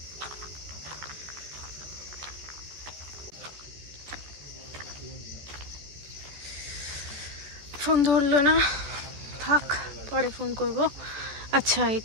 ফোন ধরলো না, থাক, পরে ফোন করব। আচ্ছা,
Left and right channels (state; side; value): late; left; 14 ms